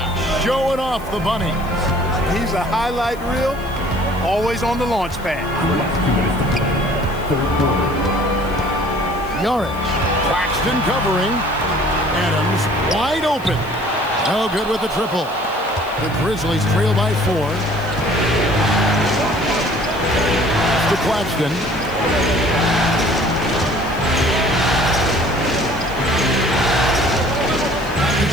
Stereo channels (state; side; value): noise; left; hiss, 22 dB below the sound